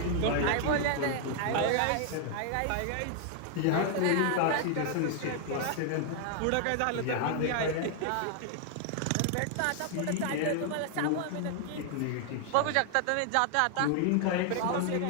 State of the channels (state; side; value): different; both; correlation 0.00